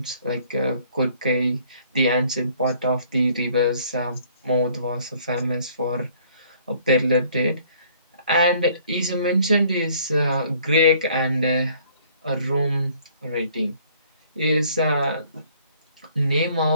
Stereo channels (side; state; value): both; inverted; correlation -0.60